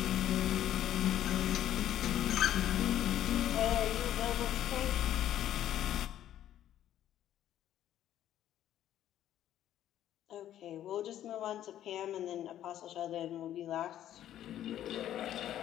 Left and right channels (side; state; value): right; quieter; 11.8 dB